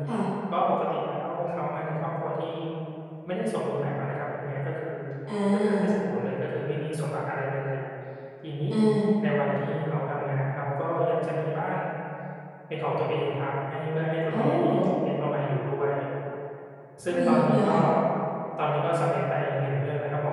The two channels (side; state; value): both; identical; correlation 1.00